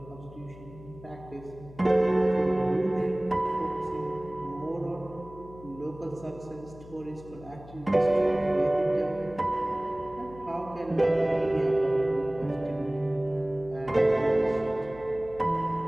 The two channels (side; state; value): left; noise; hum, 19 dB below the sound